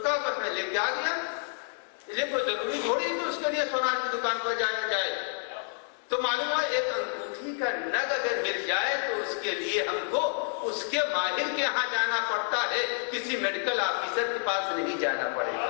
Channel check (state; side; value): silent; right; 57 dB below the other